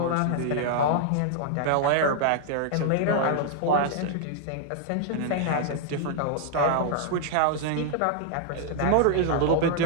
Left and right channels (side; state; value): both; different; correlation -0.01